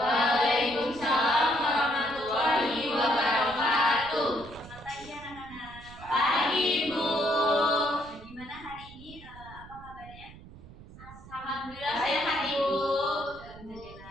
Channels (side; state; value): right; noise; rumble, 18 dB below the sound